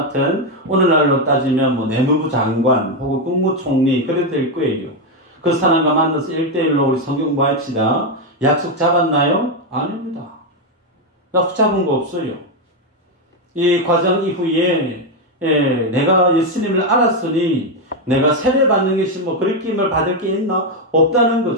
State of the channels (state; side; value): normal; both; correlation 0.05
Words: 오늘날로 따지면 내무부 장관 혹은 국무총리 그래도 될 거예요. 그 사람과 만나서 1대1로 우리 성경 공부합시다. 약속 잡았나요? 아닙니다. 약속 잡은 거 없어요. 이 과정 이후에 내가 예수님을 알았으니 내가 세례받는 것이 그리낌을 받을 게 있나? 없다는